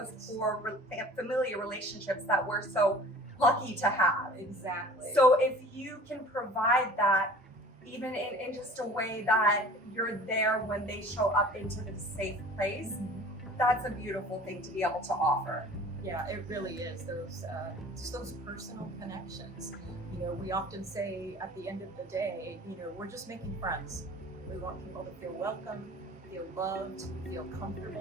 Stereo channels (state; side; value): normal; both; correlation 0.45